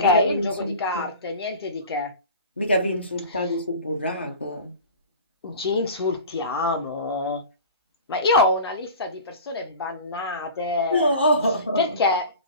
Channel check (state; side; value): inverted; both; correlation -0.37